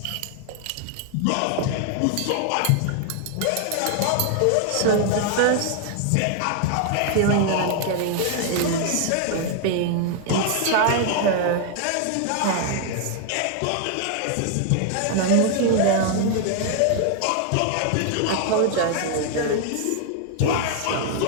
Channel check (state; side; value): different; both; correlation 0.00